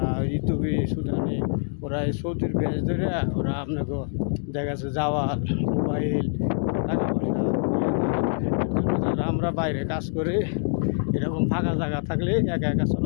ইতুবি সুদানি, ওরা এই সৌদির বেশ ধরে ওরা আপনাকে দেখা যাচ্ছে জাওয়াল, মোবাইল, টাকা পয়সা নিয়ে যায়। এর জন্য যারা আমরা বাইরে কাজ করি, এরকম ফাঁকা জায়গা থাকলে একা একা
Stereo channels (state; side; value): silent; right; digital silence